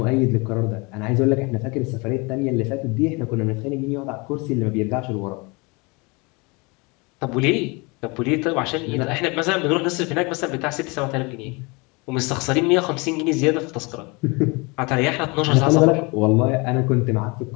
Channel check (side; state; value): right; quieter; 27.8 dB